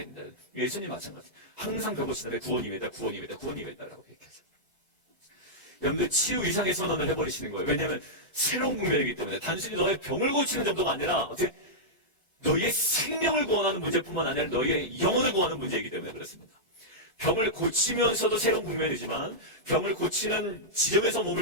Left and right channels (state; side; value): normal; both; correlation -0.10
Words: 된다. 예수님 마찬가지. 항상 배고시는데 구원임이다, 구원임이다, 구원임이다라고 얘기하죠. 여러분들 치유 이상의 선언을 해버리시는 거예요. 왜냐하면 새로운 국면이기 때문에 단순히 너의 병을 고치는 정도가 아니라 어떻게 너희의 생명을 구원하는 문제뿐만 아니라 너희의 영혼을 구원하는 문제이기 때문에 그렇습니다. 병을 고치면서도 새로운 국면이지만 병을 고치는 지점에서